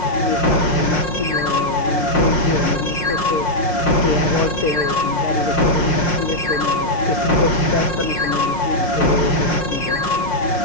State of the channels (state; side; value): late; right; 5.6 ms